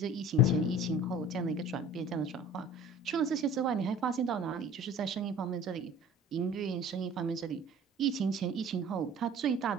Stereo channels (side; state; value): both; normal; correlation 0.44